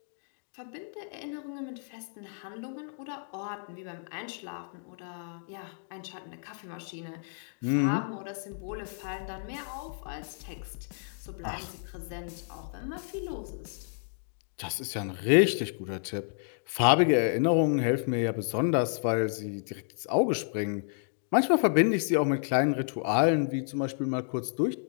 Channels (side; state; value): right; silent; digital silence